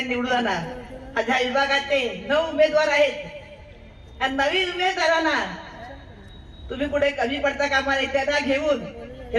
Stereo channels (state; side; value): identical; both; correlation 1.00